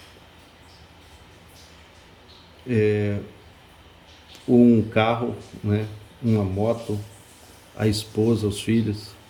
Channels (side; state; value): both; identical; correlation 1.00